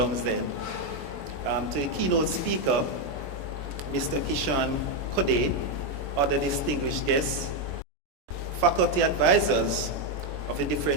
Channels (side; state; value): left; late; 22 ms